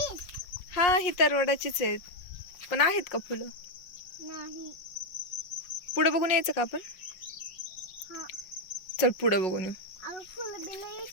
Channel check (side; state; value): right; late; 5.5 ms